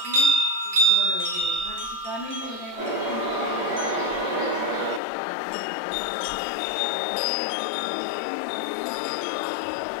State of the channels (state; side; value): drops out; right; at 5.0 s